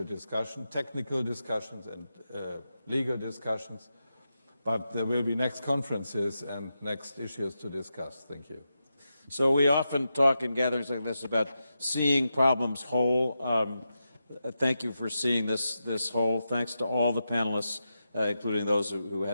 discussion, technical discussions and legal discussions. But there will be next conferences and next issues to discuss. Thank you. So we often talk in gatherings like this about seeing problems whole. Thank you for seeing this whole. Thanks to all the panelists, including those who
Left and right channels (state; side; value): inverted; both; correlation -0.88